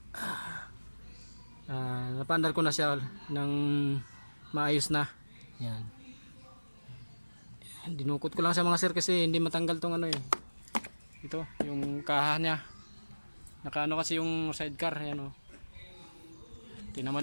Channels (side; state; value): both; inverted; correlation -1.00